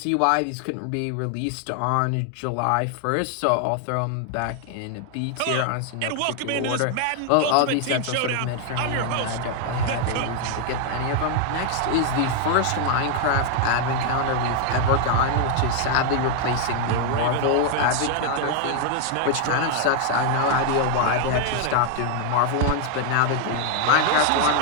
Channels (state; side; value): different; both; correlation 0.00